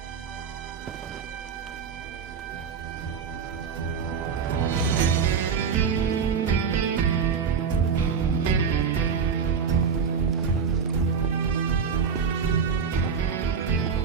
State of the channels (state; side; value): quieter; left; 6.3 dB